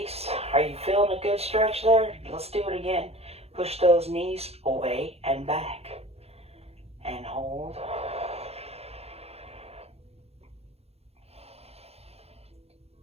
Are you feeling a good stretch there? Let's do it again. Push those knees away and back. And hold.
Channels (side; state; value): left; late; 0.29 ms